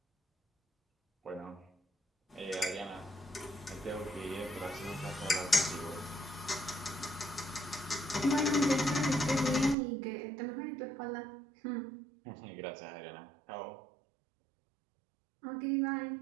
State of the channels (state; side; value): drops out; left; at 9.8 s